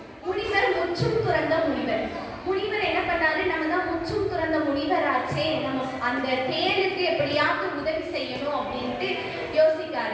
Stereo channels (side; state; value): both; identical; correlation 1.00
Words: முனிவர் முற்றும் துறந்த முனிவர். முனிவர் என்ன பண்ணாரு, நம்ம தான் முற்றும் துறந்த முனிவர் ஆச்சே, நம்ம அந்த தேளுக்கு எப்படியாவது உதவி செய்யணும் அப்படின்ட்டு